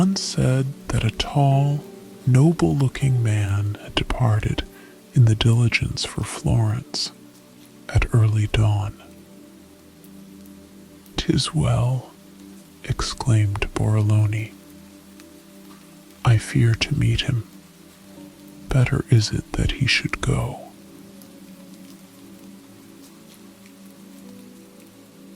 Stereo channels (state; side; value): identical; both; correlation 1.00